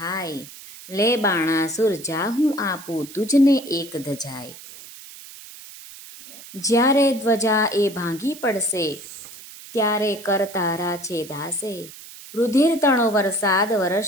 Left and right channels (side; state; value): right; noise; hiss, 16 dB below the sound